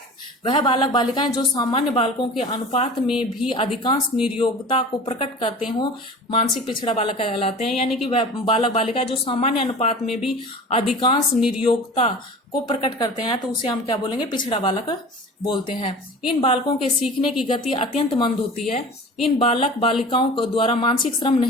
वह बालक बालिकाएं जो सामान्य बालकों के अनुपात में भी अधिकांश निर्योग्यता को प्रकट करते हो, मानसिक पिछड़ा बालक कहलाते हैं। यानी कि वह बालक बालिकाएं जो सामान्य अनुपात में भी अधिकांश निर्योग्यता को प्रकट करते हैं तो उसे हम क्या बोलेंगे, पिछड़ा बालक बोलते हैं। इन बालकों के सीखने की गति अत्यंत मंद होती है। इन बालक बालिकाओं को द्वारा मानसिक श्रम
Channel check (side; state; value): both; normal; correlation 0.38